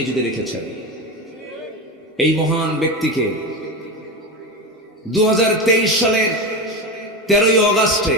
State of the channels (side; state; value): both; normal; correlation 0.20